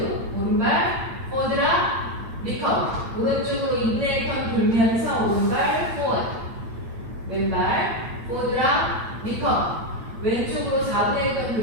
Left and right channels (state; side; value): late; left; 8.9 ms